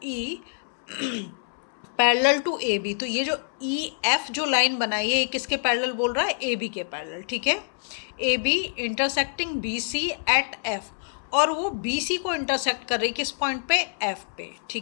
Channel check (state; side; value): silent; right; 61 dB below the other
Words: E parallel to A B. तो ये जो ई एफ जो लाइन बनाई है ये किसके पैरेलल बोल रहा है, ए बी के पैरेलल। ठीक है, A B intersecting B C at F, और वो बी सी को इंटरसेक्ट कर रही किस पॉइंट पे, एफ पे।